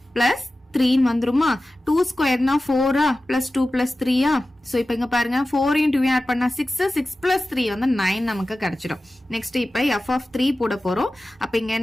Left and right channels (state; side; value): normal; both; correlation 0.95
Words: பிளஸ் 3 வந்துருமா? 2 ஸ்கொயர்னா 4 பிளஸ் 2 பிளஸ் 3. ஸோ இப்போ இங்க பாருங்க 4 × 2 ஆட் பண்ணா 6 6 பிளஸ் 3 வந்து 9 நமக்கு கிடைச்சிடும். நெக்ஸ்ட் இப்போ எஃப் ஆஃப் 3 போட போறோம். அப்ப இங்க